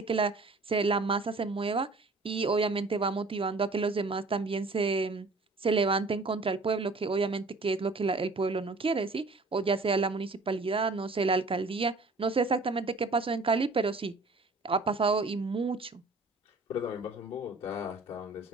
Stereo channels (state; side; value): quieter; left; 3.4 dB